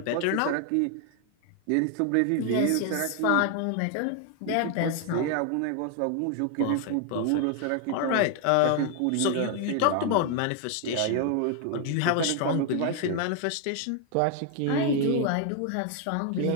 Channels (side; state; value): both; different; correlation 0.00